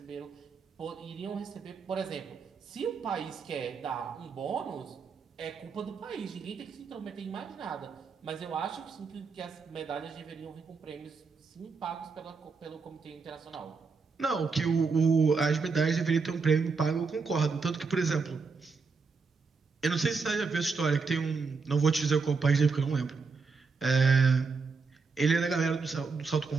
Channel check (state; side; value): quieter; left; 4.8 dB